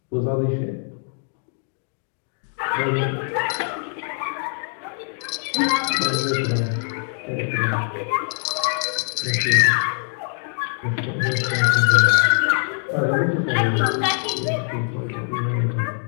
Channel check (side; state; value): right; silent; 60 dB below the other